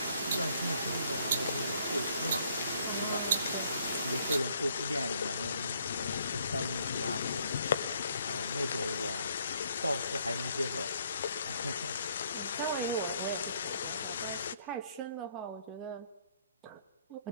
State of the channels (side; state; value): both; inverted; correlation -0.67